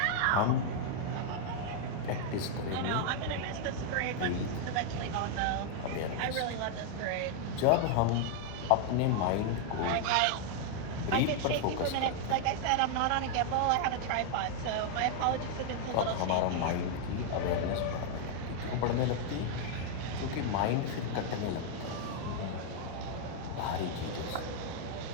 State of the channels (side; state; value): both; different; correlation 0.00